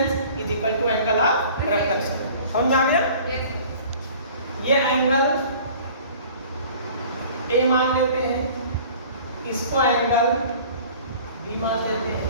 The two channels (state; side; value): inverted; both; correlation -0.47